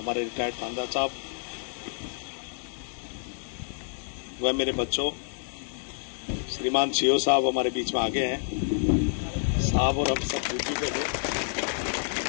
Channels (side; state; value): right; silent; digital silence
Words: रिटायर्ड थानेदार साहब, वह मेरे बच्चों, श्रीमान सीओ साहब हमारे बीच में आगे हैं साहब, और हम सब ड्यूटी पे थे।